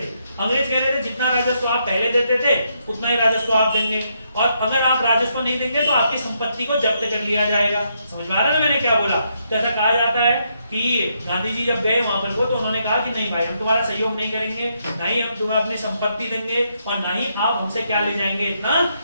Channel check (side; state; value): both; inverted; correlation -0.77